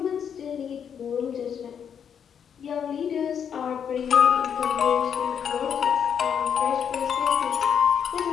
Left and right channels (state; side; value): quieter; right; 7.8 dB